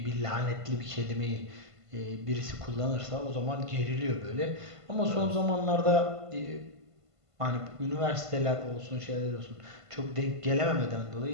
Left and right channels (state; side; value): late; left; 1.5 ms